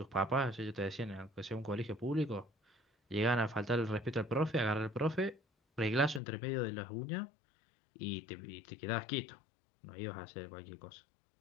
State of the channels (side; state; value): right; drops out; at 6.2 s